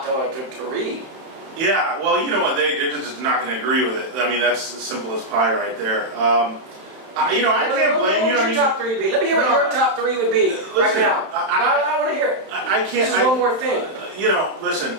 to read. Yeah, well, you know what? They're just not going to agree with it. I mean, that's as simple as pie right there. You know, I can't blame you. What would your top 3 be? Let me hear what your top 3 would be right Listen, now. I I want to hear it. I can't. This is one more thing. You know,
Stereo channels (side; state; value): left; late; 31 ms